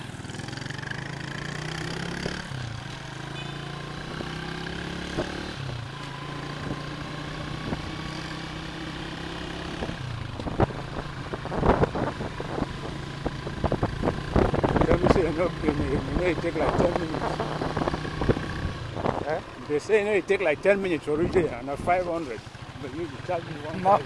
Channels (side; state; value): both; identical; correlation 1.00